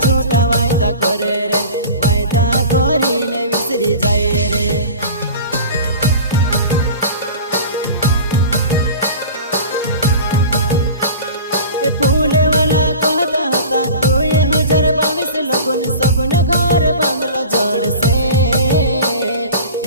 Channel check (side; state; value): both; inverted; correlation -0.38